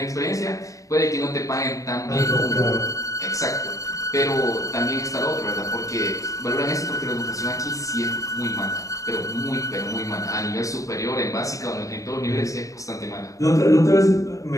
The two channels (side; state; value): right; late; 0.16 ms